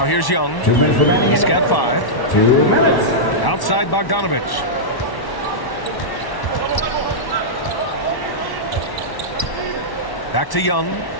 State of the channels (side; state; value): right; late; 1.1 ms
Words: here's Young. 2 minutes remaining. He's got 5. 2 minutes. Outside Bogdanovich. Back to Young.